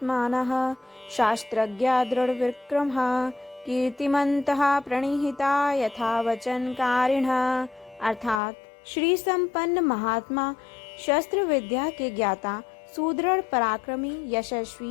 शास्त्रज्ञा दृढ़विक्रमः कीर्तिमन्तः प्रणिहिता यथा वचनकारिणः। अर्थात श्री संपन्न महात्मा, शस्त्र विद्या के ज्ञाता, सुदृढ़, पराक्रमी,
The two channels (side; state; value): right; drops out; at 8.4 s